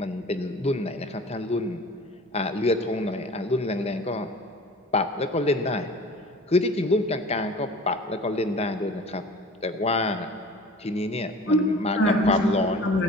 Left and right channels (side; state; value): both; normal; correlation 0.42